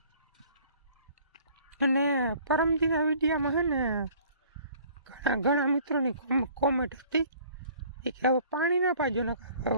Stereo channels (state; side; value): inverted; both; correlation -0.54